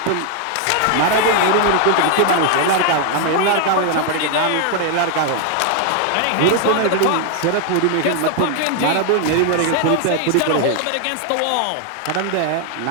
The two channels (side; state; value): both; different; correlation 0.00